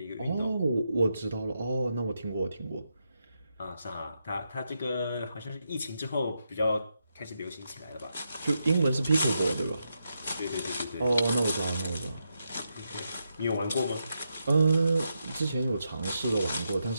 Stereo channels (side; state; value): both; inverted; correlation -0.84